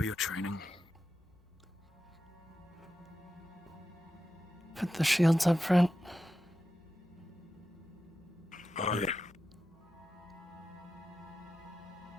your training. Put the shields up front. Oh, yeah.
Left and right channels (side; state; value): both; normal; correlation 0.90